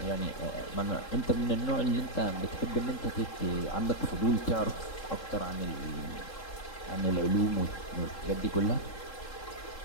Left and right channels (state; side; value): late; right; 3.7 ms